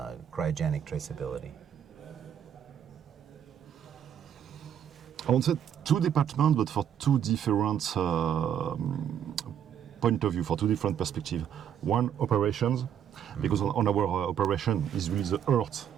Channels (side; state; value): left; quieter; 9.2 dB